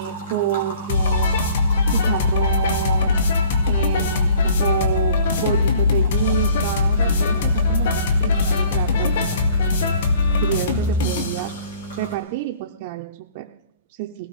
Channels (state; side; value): inverted; both; correlation -0.54